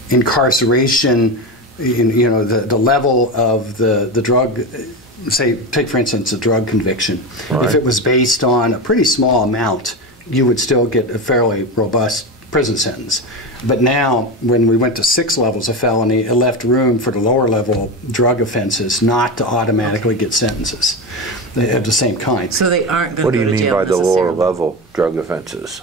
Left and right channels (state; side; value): normal; both; correlation 0.20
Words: incarceration. The level of the drug. Say, take for instance a drug conviction. Right. If it was based on a pretty small amount, you would still get a fairly robust prison sentence. But now, when we went to 6 levels of felony, it left room for the lower level drug offenses not to automatically get sentences of the same kind. So they aren't going to what do go you to mean jail by the lower necessarily. level drug offenses?